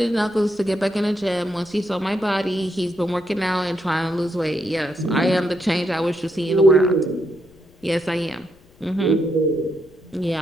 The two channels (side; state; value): left; noise; rumble, 29 dB below the sound